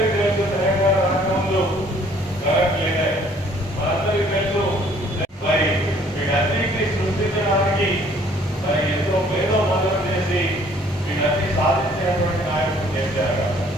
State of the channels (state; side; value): normal; both; correlation 0.59